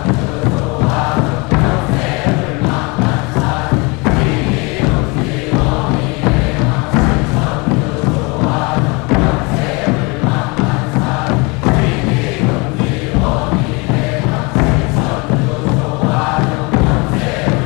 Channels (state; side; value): quieter; right; 27.6 dB